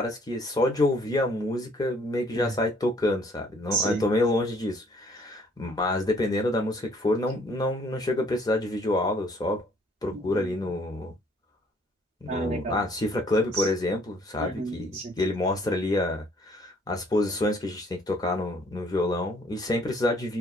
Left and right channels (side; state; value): both; normal; correlation 0.61